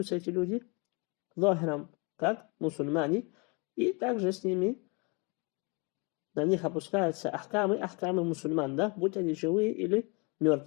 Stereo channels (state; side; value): quieter; right; 31.1 dB